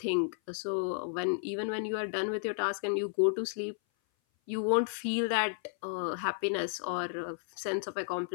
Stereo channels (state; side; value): silent; right; 56 dB below the other